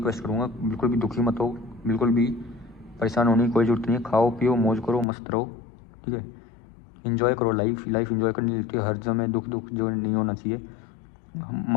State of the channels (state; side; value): drops out; right; at 5.1 s